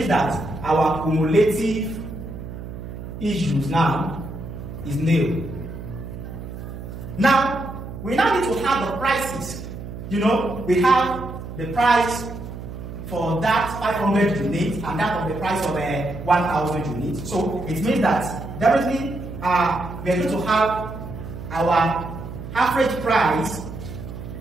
that our cumulative issues now is nil. Now, we now need to have the prices. We have the price for that 500 units and that of the price of 1,000 units. So it means that definitely we are going to have our average price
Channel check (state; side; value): noise; right; hum, 10 dB below the sound